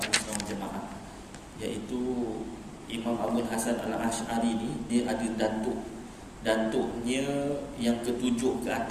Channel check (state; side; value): identical; both; correlation 1.00